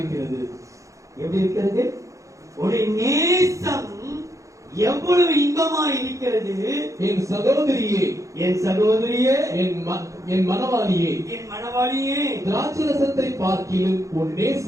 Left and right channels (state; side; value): late; left; 0.15 ms